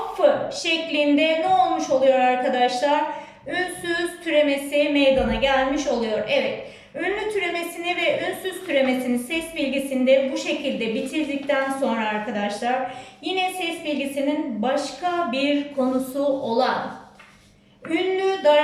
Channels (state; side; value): identical; both; correlation 1.00